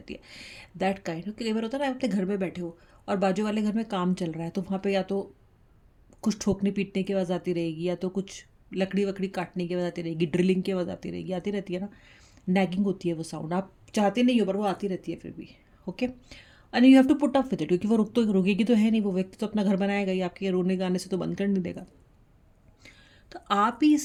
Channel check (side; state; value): both; identical; correlation 1.00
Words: है, दैट काइंड। कई बार होता है ना, आप अपने घर में बैठे हो और बाजू वाले घर में काम चल रहा है, तो वहाँ पे या तो कुछ ठोकने पीटने की आवाज़ आती रहेगी, या तो कुछ लकड़ी वकड़ी काटने की आवाज़ आती रहेगी, ड्रिलिंग की आवाज़ आती रहेगी, आती रहती है ना। नैगिंग होती है वो साउंड, आप चाहते नहीं हो पर वो आती रहती है फिर भी। Okay, and you have to put up with it, क्योंकि वो रुकेगी तो है नहीं, वो व्यक्ति तो अपना घर बनाएगा ही, आपके रोने गाने से तो बंद कर नहीं देगा। तो आप ही